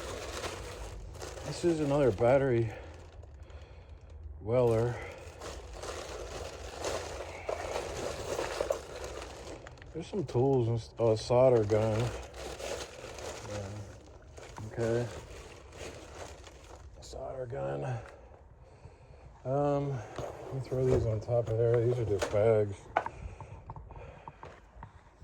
This is another battery weller. There's some tools and a solder gun. Okay. Solder gun. Let me throw these on top of there. These are just bags.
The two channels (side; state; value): both; identical; correlation 1.00